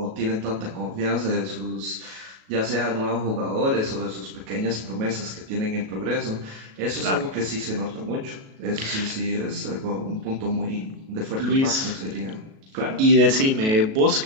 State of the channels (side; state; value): left; late; 37 ms